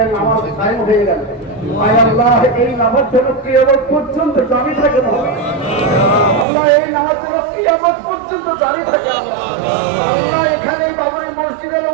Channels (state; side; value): drops out; left; at 6.5 s